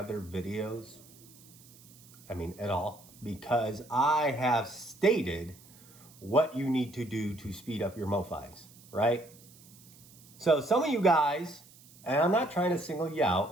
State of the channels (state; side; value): noise; right; hiss, 23 dB below the sound